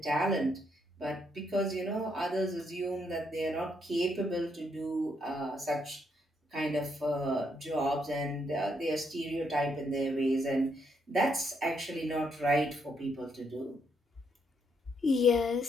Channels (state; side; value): normal; both; correlation 0.75